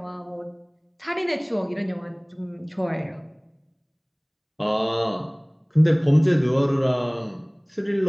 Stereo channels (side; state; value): both; identical; correlation 1.00